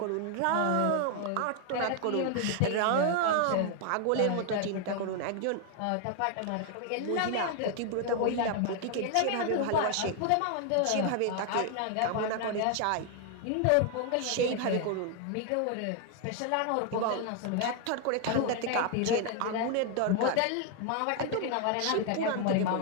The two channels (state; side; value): different; both; correlation 0.00